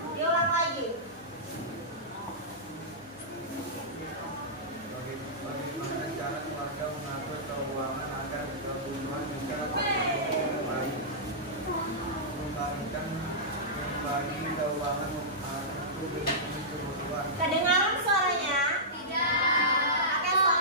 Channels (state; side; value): normal; both; correlation -0.15